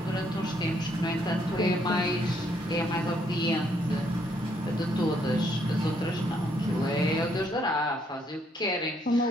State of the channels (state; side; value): normal; both; correlation 0.71